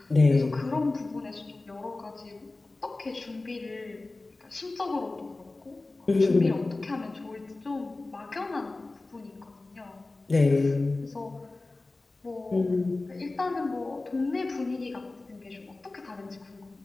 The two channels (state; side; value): quieter; right; 3.2 dB